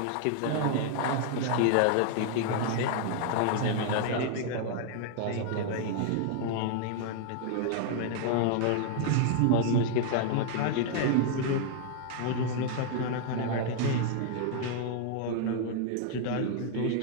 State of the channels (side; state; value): both; different; correlation 0.00